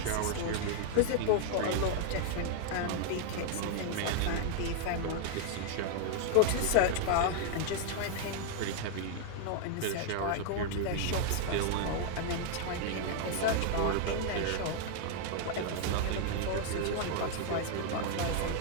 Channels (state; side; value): different; both; correlation 0.00